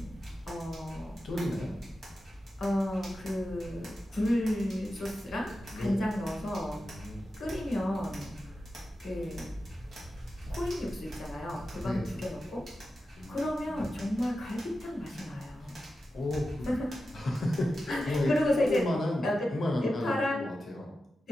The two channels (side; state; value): both; normal; correlation 0.91